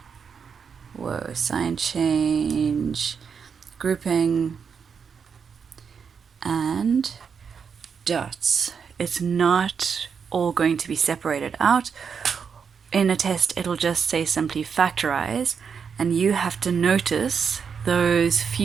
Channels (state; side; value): quieter; left; 6.4 dB